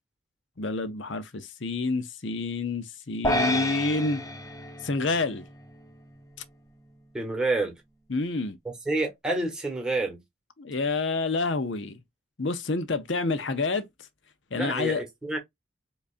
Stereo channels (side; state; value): both; normal; correlation 0.32